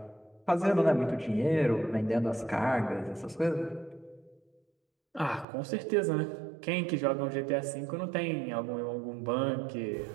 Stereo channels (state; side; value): drops out; left; at 5.5 s